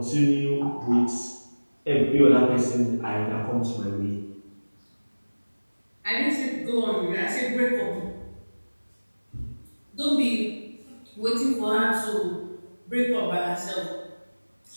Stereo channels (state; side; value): inverted; both; correlation -1.00